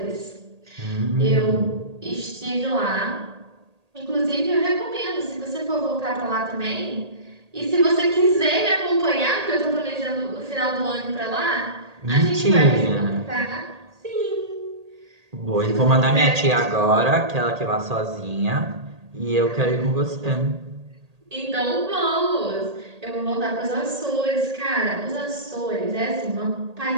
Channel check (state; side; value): late; left; 1.8 ms